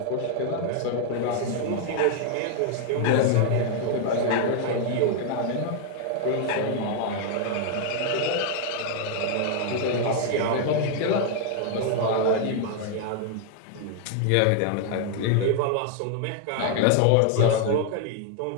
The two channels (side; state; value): both; different; correlation 0.00